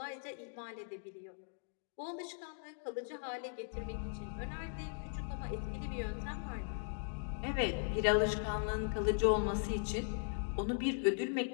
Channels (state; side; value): silent; right; digital silence